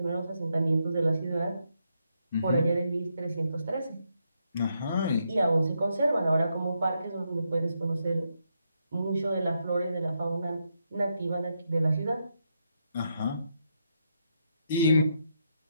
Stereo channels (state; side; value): inverted; both; correlation -0.81